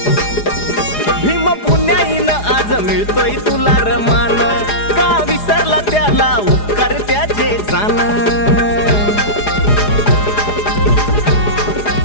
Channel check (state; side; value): late; right; 4.9 ms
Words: भीम पुण्याईन आज मिळतोय तुला रमान का विसरला त्याला उपकार त्याचे जाण